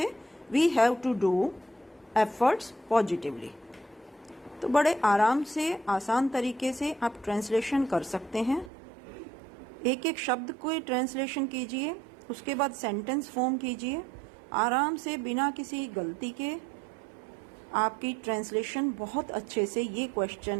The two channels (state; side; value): drops out; left; at 8.7 s